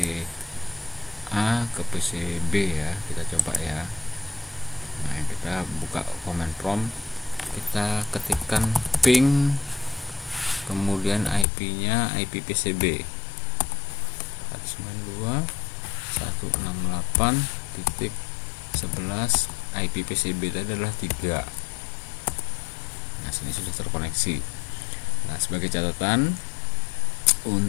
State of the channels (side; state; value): right; drops out; at 11.5 s